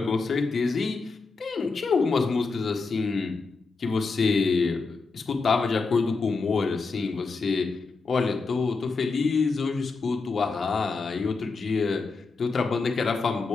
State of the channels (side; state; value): right; quieter; 4.2 dB